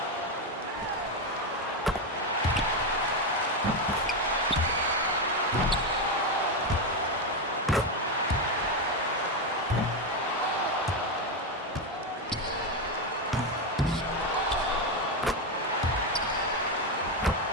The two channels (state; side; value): normal; both; correlation 0.09